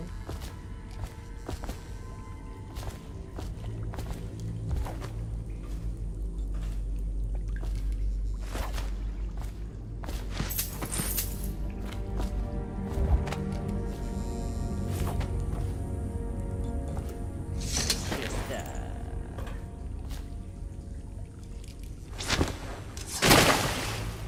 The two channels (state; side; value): identical; both; correlation 1.00